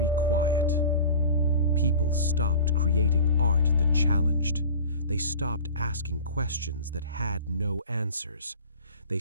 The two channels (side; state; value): both; inverted; correlation -0.39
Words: quiet. People stopped creating art that challenged. They stopped asking questions that had no answers. They